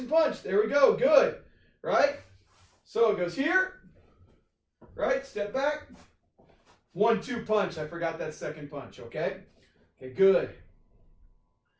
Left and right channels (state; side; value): identical; both; correlation 1.00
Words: punch. There we go. Good, right? So it goes here, right? Step back. 1-2 punch. I forgot that second punch, okay? Okay, good.